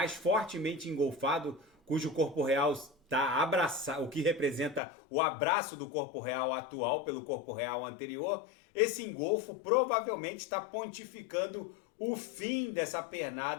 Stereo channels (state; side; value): drops out; right; at 4.8 s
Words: fortemente engolfado, cujo corpo real está abraçado, o que representa o abraço do corpo real atual pelo corpo real anterior. Esse engolfo provavelmente está pontificando o fim dessa